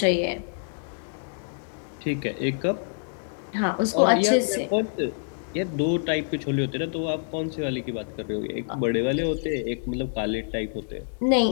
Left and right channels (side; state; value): right; silent; digital silence